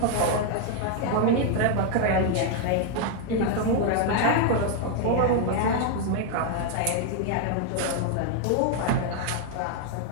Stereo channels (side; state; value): both; different; correlation 0.00